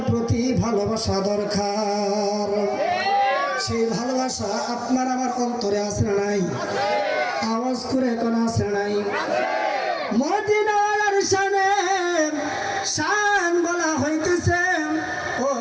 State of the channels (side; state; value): both; identical; correlation 1.00